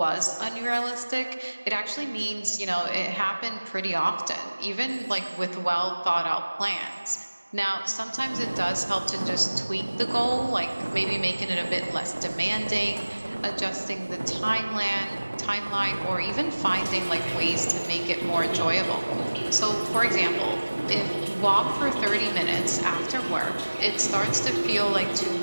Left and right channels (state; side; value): inverted; both; correlation -1.00